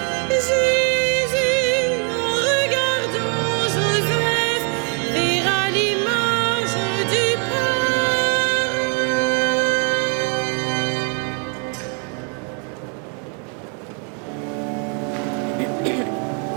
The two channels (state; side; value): quieter; left; 38.7 dB